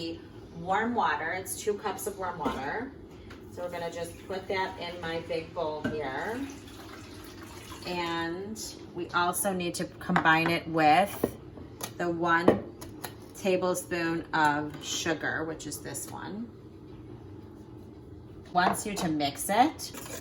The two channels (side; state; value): both; identical; correlation 1.00